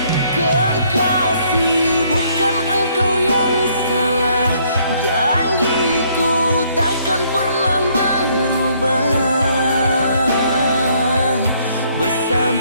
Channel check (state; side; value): inverted; both; correlation -0.66